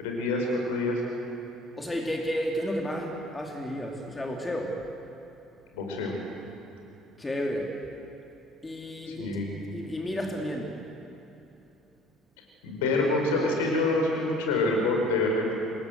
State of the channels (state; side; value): normal; both; correlation 0.51